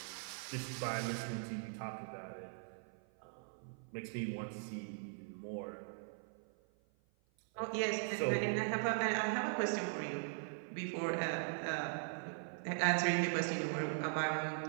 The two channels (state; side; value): silent; left; 51 dB below the other